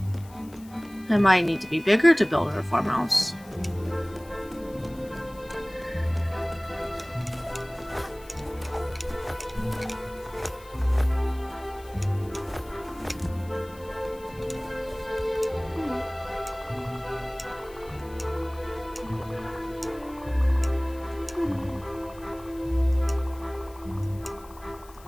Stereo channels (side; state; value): left; noise; hiss, 24 dB below the sound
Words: I might need to be bigger to build her farmhouse.